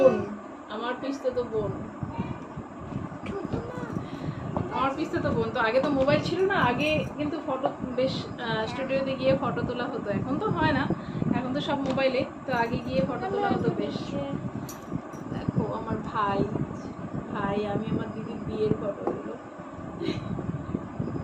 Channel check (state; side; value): identical; both; correlation 1.00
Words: আমার পিস্তাতো বোন, আমার পিস্তাতো বোন। তো আগে তো মোবাইল ছিল না, আগে কিন্তু ফটো বেশ স্টুডিওতে গিয়ে ফটো তোলা হতো, এখন তো হয় না, এখন তো সব মোবাইলে। তো আগে গিয়ে ফটো তোলা হতো বেশ। দেখো আমার ভাই, আমি আমার দিদির বিয়ের ফটো গুলো।